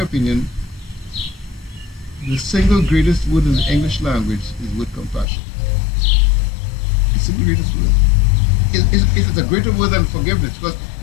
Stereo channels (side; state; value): right; drops out; at 5.2 s